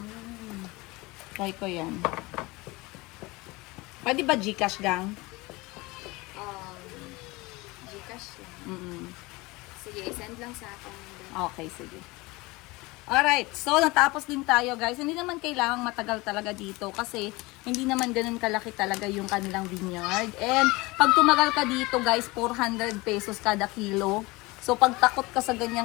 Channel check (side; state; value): right; quieter; 22.9 dB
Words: Try ko yan. Pwede ba Gcash gang? Gcash lang. Mm-mm. Sige, send lang sa akin. Okay, sige. Alright, so natapos din tayo guys. Hindi naman kailangang matagal talaga dito kasi hindi naman ganun kalaki talaga yung kanilang vineyard. And pag tumagal ka dito guys, 400 pesos kada kilo. So pag takot ka sa ganyang